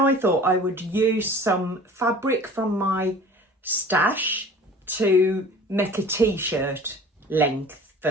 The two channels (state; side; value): normal; both; correlation 0.44